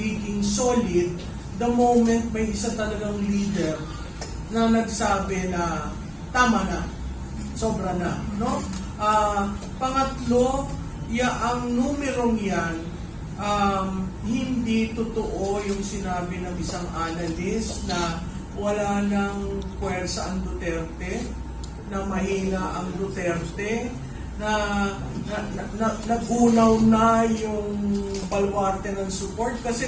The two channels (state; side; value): identical; both; correlation 1.00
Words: solid the moment may isa talagang leader na nagsabi na tama na, sobra na, no? Pangatlo, ang numerong yan, hindi totoo yung sinabi ng isang analyst na wala nang puwersa ang Duterte, na mahina ang Duterte, na nagunaw na yung baluarte ng support.